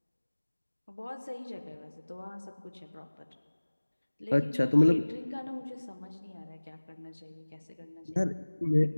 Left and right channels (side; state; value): both; inverted; correlation -1.00